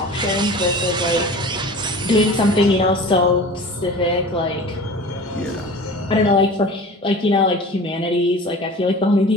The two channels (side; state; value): both; normal; correlation 0.39